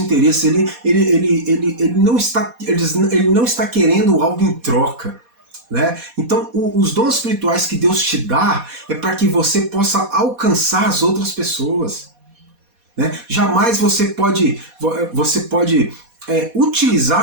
ele não está querendo algo em troca. Né? Então, os dons espirituais que Deus te dá é para que você possa alcançar as outras pessoas. Né? Jamais você pode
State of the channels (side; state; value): left; late; 4.2 ms